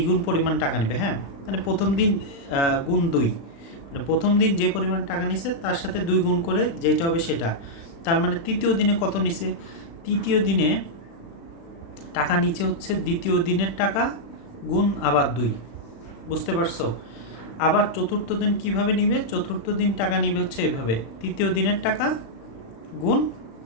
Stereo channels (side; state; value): right; late; 36 ms